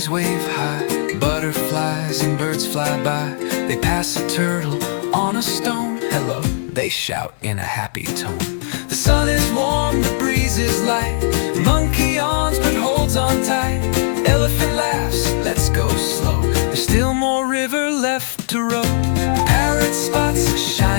wave high, butterflies and birds fly by. They pass a turtle on a stone, hello, they shout in a happy tone. The sun is warm, the breeze is light. Monkey yawns but holds on tight. Elephant laughs, let's go slow, there's still more river left to row. Parrot spots a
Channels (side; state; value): right; silent; digital silence